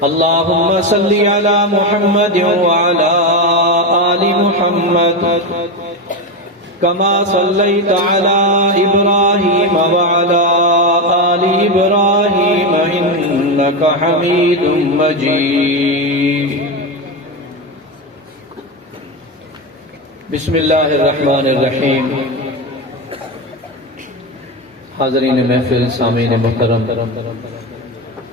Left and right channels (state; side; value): normal; both; correlation 0.14